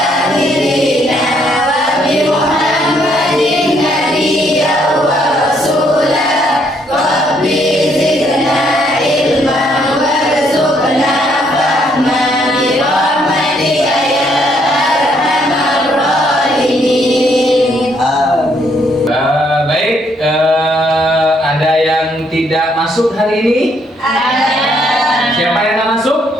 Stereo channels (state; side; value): normal; both; correlation 0.70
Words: dinan wa bi Muhammadin nabiyyan wa rasulan rabbi zidna ilman warzuqna fahman bi rahmatika ya arhamar rahimin. Amin. Baik, ada yang tidak masuk hari ini? Siapa yang nggak